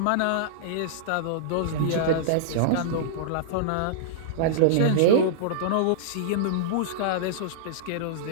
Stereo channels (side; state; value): both; different; correlation -0.02